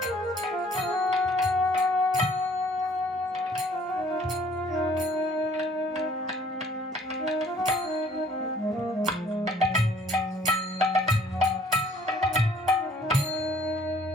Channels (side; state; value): both; normal; correlation 0.59